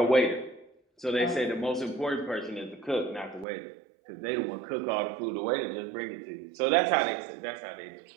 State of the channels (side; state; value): left; drops out; at 3.5 s